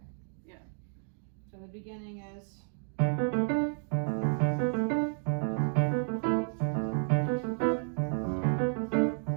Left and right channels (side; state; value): left; silent; 57 dB below the other